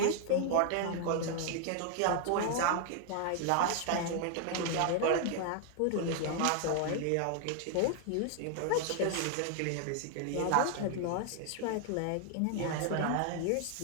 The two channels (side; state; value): both; different; correlation 0.00